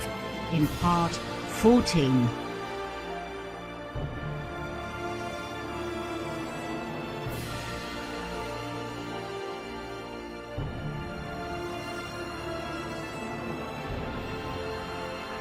in part 14.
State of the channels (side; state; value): both; identical; correlation 1.00